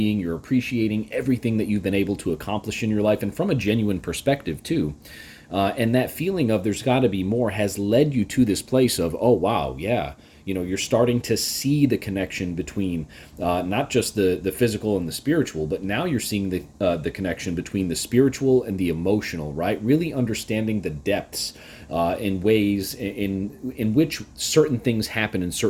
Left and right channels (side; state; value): both; identical; correlation 1.00